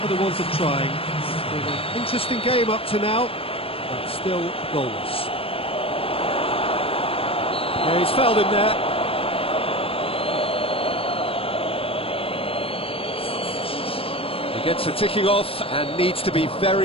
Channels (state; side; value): late; right; 0.27 ms